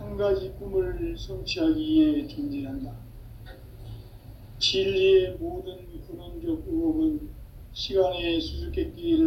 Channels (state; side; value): identical; both; correlation 1.00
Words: 가지 꿈을 성취하기 위해 존재한다. 진리의 모든 근원적 의혹은 시간의